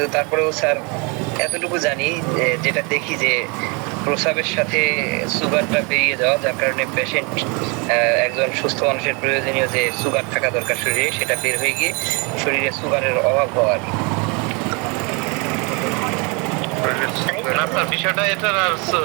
তারপরেও স্যার এতটুকু জানি যেটা দেখি যে প্রস্রাবের সাথে সুগারটা বেরিয়ে যাওয়া, যার কারণে পেশেন্ট একজন সুস্থ মানুষের প্রয়োজনীয় যে সুগার থাকা দরকার শরীরে সেটা বের হয়ে গিয়ে শরীরে সুগারের অভাব হওয়ার। বিষয়টা এটা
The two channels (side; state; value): left; quieter; 31.4 dB